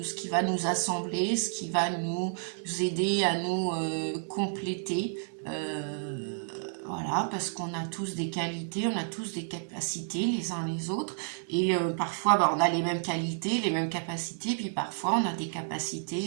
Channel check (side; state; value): left; silent; digital silence